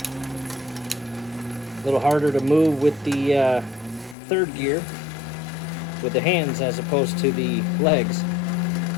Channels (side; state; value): right; drops out; at 4.2 s